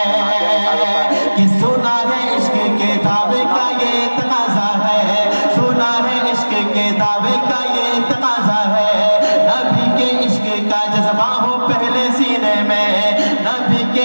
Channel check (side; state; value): both; inverted; correlation -1.00